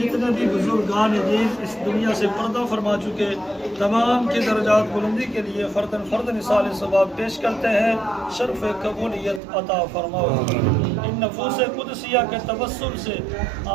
بھی بزرگان دین اس دنیا سے پردہ فرما چکے تمام کی درجات بلندی کے لیے فردن فردن اصال ثواب پیش کرتے ہیں شرف قبولیت عطا فرماؤ۔ ان نفوس قدسیہ کے توسل سے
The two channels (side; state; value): left; drops out; at 9.4 s